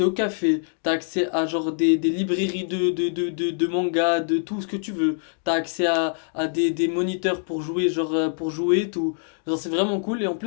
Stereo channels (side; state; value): right; silent; digital silence